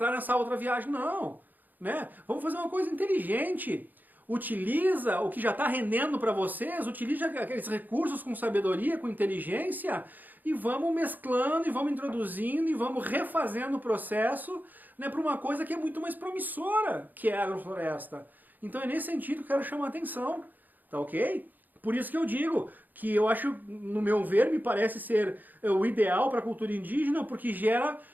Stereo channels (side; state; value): left; late; 0.085 ms